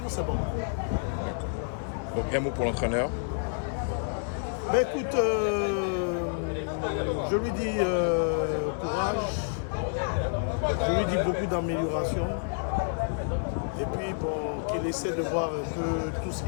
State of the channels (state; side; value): silent; right; digital silence